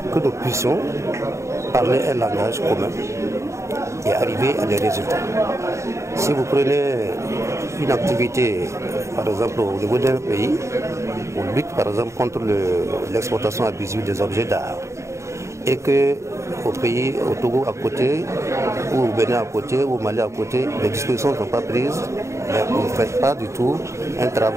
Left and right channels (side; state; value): left; late; 0.14 ms